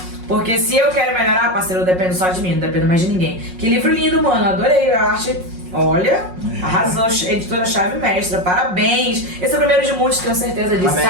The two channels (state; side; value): late; left; 5.5 ms